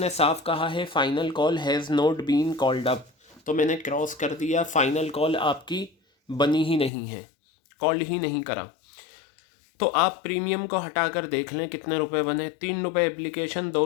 साफ कहा है final call has not been called up, तो मैंने क्रॉस कर दिया। फाइनल कॉल आपकी बनी ही नहीं है, कॉल ही नहीं करा। तो आप प्रीमियम को हटाकर देख लें कितने रुपए बने। 3 रुपये एप्लीकेशन, 2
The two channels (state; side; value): drops out; right; at 6.9 s